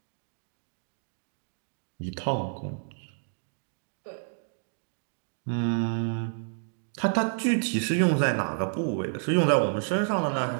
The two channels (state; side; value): silent; left; 58 dB below the other